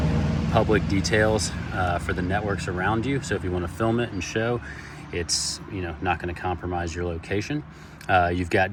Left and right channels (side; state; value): both; identical; correlation 1.00